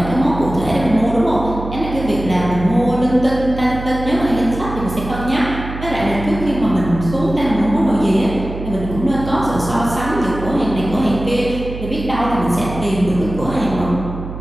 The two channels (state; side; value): noise; right; hum, 9 dB below the sound